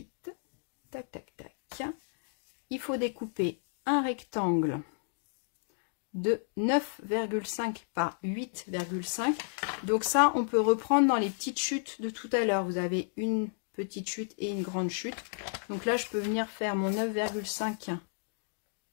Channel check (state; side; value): silent; right; digital silence